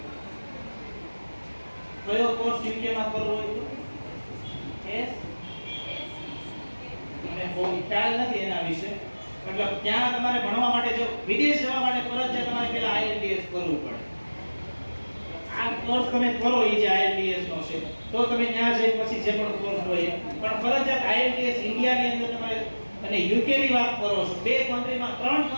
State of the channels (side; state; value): both; inverted; correlation -1.00